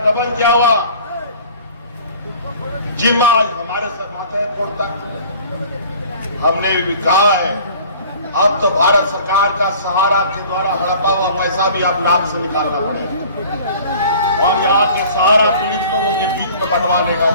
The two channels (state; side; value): inverted; both; correlation -0.47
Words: दमन किया हुआ जिम्मा हमारे सर माथे छोड़ता। हमने भी कहा है अब तो भारत सरकार का सहारा के द्वारा हड़पा हुआ पैसा भी अब नाम से निकालना पड़ेगा। और यहाँ के सहारा पीड़ित लोगों के बीच में बंटवाने का